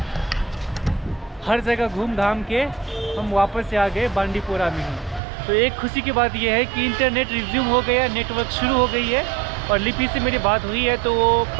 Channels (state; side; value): drops out; left; at 5.2 s